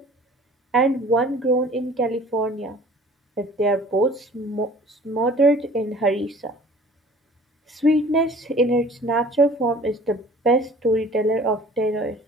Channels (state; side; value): normal; both; correlation 0.49